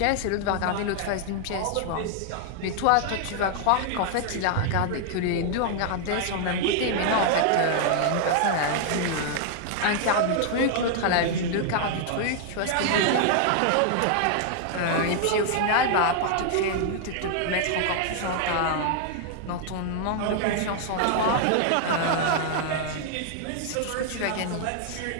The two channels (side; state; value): both; different; correlation 0.00